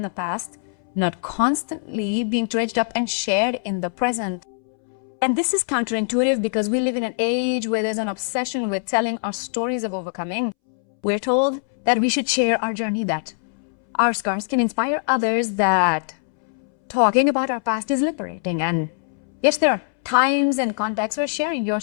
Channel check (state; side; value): silent; right; 64 dB below the other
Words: the past, not constantly being dredged up and shared in the present. And this is counterintuitive because we live in an age where there's an obsession with telling our stories of overcoming. We're told that we should share our journey, that our scars can inspire others, that talking about our past is liberating. And yes, there are times and contexts where sharing your